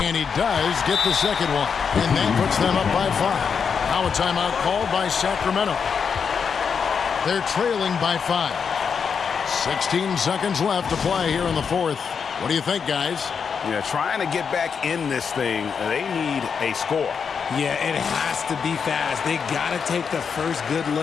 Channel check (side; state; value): right; quieter; 6.3 dB